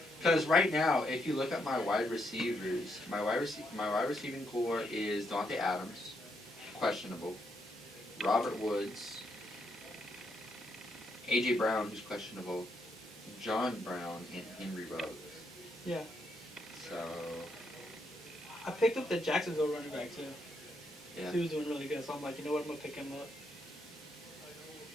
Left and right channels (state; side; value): normal; both; correlation 0.78